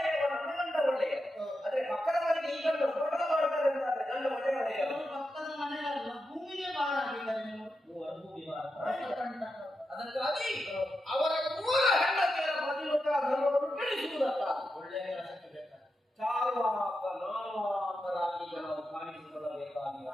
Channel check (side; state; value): both; normal; correlation 0.88